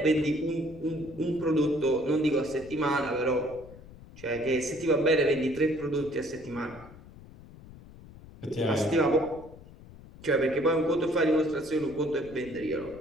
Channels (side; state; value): left; noise; rumble, 19 dB below the sound